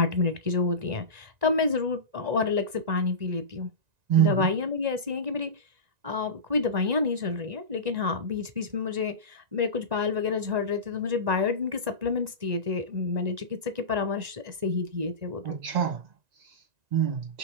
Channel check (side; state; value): left; late; 1.9 ms